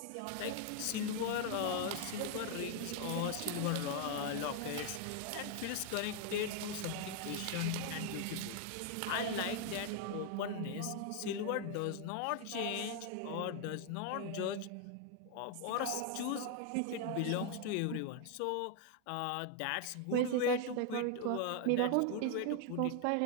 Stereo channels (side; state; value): both; different; correlation 0.00